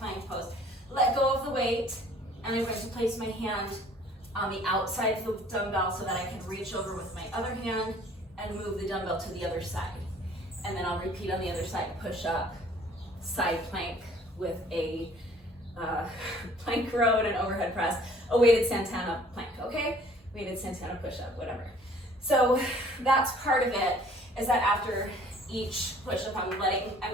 pose. Let go of the weight, and I'm going to place my hand on the outside of the dumbbell so that I can reach over with my other hand and move the dumbbell to the other side. And then I'll repeat on the other side, push up, side plank with a plank row and an overhead press, a weighted Santana plank, okay? Weighted Santana push-up, whatever. So that's part of it, is that after each push-up, I'm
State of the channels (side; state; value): both; normal; correlation 0.55